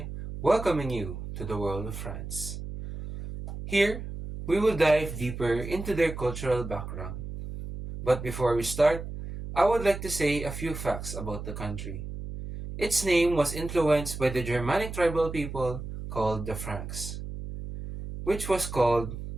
welcoming you to the world of France. Here, we will dive deeper into their cultural background. But before we start, I would like to say a few facts about the country. Its name was influenced by the Germanic tribal people called the Franks, which was called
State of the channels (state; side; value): noise; right; hum, 8 dB below the sound